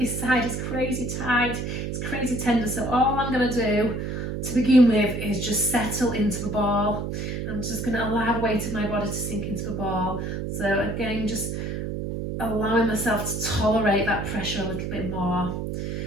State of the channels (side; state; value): right; noise; hum, 4 dB below the sound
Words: side is crazy tight, it's crazy tender, so all I'm going to do to begin with is just settle into the ball. I'm just going to allow the weight of my body to sink into the ball. So again, just allowing myself to tolerate that pressure a little bit more.